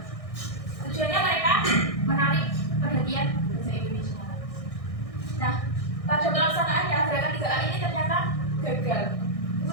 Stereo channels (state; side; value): late; right; 1.6 ms